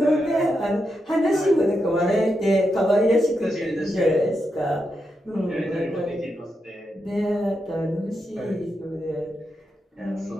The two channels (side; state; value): both; normal; correlation 0.85